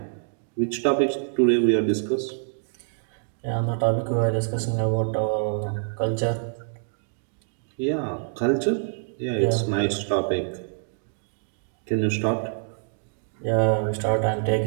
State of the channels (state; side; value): silent; left; digital silence